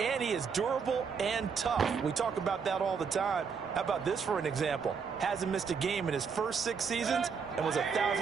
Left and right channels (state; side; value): quieter; left; 6.0 dB